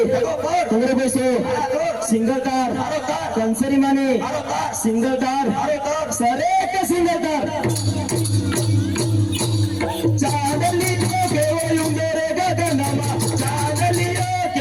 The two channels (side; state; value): left; noise; rumble, 25 dB below the sound